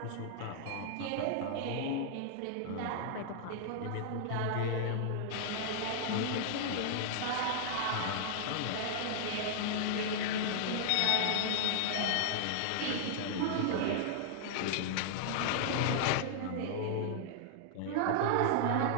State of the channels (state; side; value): different; both; correlation -0.01